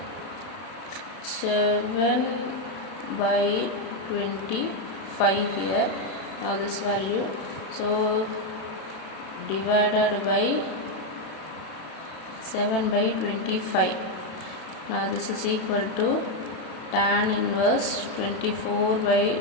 7 by 25 here. Now this value, so divided by 7 by 25. Now this is equal to tan inverse 24 by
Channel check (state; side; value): late; right; 32 ms